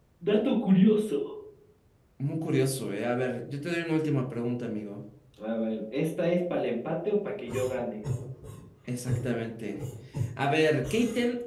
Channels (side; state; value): both; identical; correlation 1.00